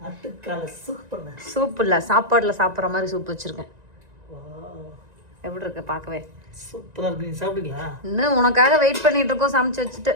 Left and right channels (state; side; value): late; left; 1.9 ms